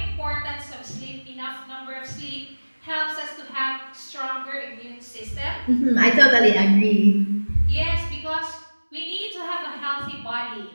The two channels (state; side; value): inverted; both; correlation -1.00